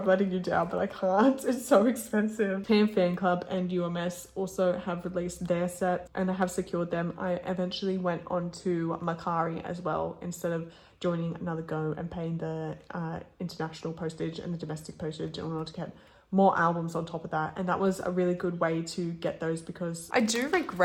letting you down, but I can't. It's so expensive. Japan Fan Club and UMS also have released their set and I have secured them. I eventually went on to Mercari as well, instead of joining another go and paying the international postage and the domestic postage in order to get more albums on top of that. And that was a really good way to get those, because I do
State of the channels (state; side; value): identical; both; correlation 1.00